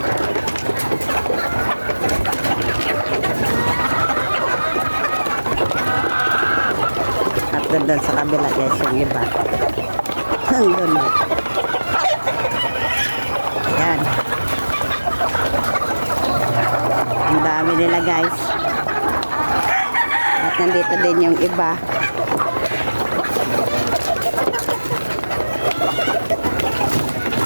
Doon sa kabila guys yung iba. Doon. Ayan. Ang dami nila guys. At nandito din yung iba.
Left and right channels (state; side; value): inverted; both; correlation -1.00